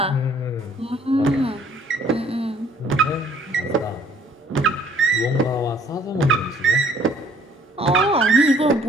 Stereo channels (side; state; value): both; normal; correlation 0.59